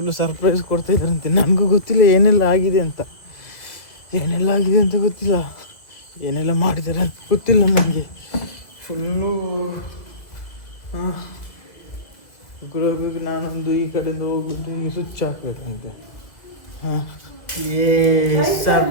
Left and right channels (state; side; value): late; right; 1.9 ms